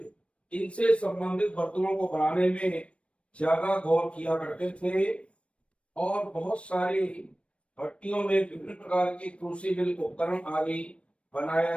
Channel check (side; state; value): right; late; 0.061 ms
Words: इनसे संबंधित बर्तनों को बनाने में ज्यादा गौर किया करते थे। और बहुत सारी भट्टियों में विभिन्न प्रकार के क्रूसिबल उपकरण आदि बनाया